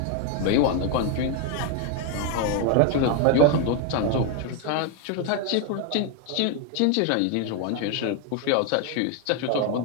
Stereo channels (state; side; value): different; both; correlation 0.01